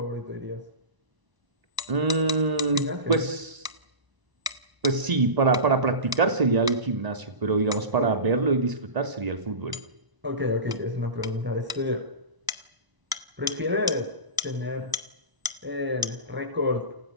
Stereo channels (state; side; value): late; left; 1.0 ms